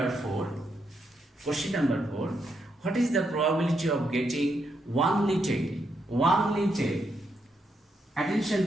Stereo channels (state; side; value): normal; both; correlation 0.80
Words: 4. Question number 4. What is the probability of getting one tail? One tail.